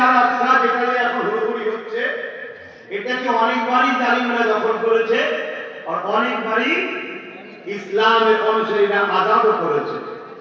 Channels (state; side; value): identical; both; correlation 1.00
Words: আল আকসা যেটা এখন হুড়োহুড়ি হচ্ছে, এটাকে অনেকবারই জালিমরা দখল করেছে আর অনেকবারই ইসলামের অনুসারীরা আজাদও করেছে।